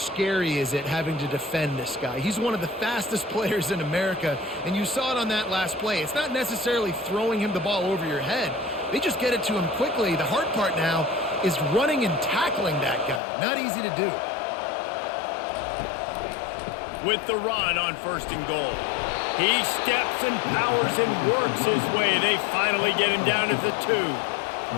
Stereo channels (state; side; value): drops out; right; at 13.2 s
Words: is it having to defend this guy? He's one of the fastest players in America, and you saw it on that last play. It's not necessarily throwing him the ball over your head. They just get it to him quickly. The hard part now is running and tackling that guy. Not easy to do. With the run on 1st and goal. He steps and powers and works his way. They finally get him down at the 2.